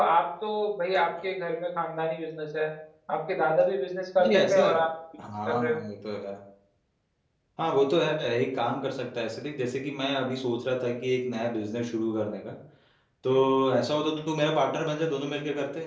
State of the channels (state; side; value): identical; both; correlation 1.00